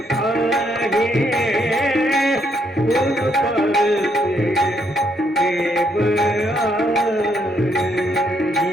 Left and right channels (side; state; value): both; normal; correlation 0.73